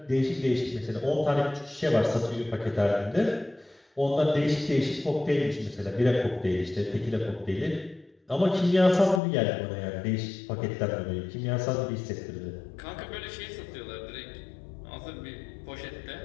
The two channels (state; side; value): drops out; right; at 9.2 s